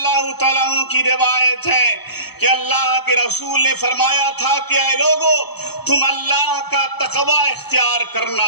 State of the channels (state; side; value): late; right; 0.98 ms